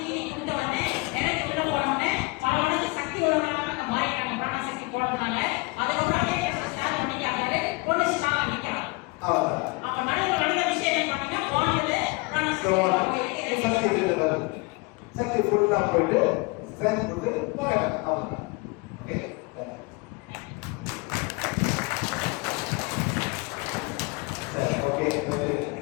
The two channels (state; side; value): quieter; right; 26.6 dB